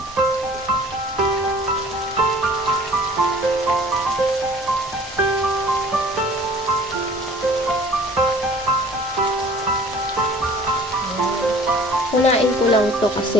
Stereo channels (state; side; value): normal; both; correlation 0.49